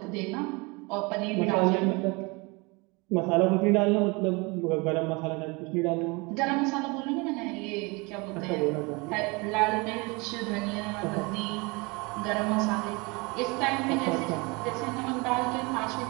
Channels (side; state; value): left; quieter; 27.3 dB